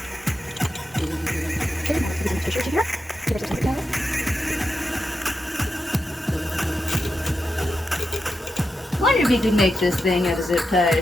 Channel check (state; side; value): normal; both; correlation 0.88